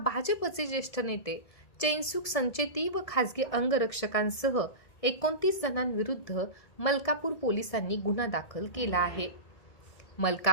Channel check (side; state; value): right; late; 1.7 ms